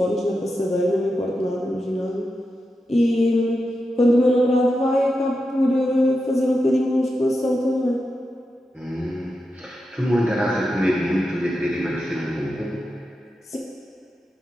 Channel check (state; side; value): normal; both; correlation 0.89